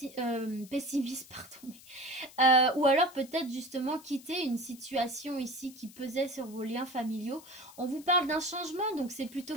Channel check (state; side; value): noise; left; hiss, 20 dB below the sound